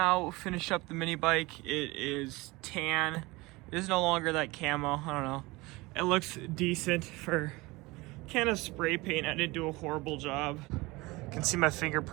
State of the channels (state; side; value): quieter; left; 22.4 dB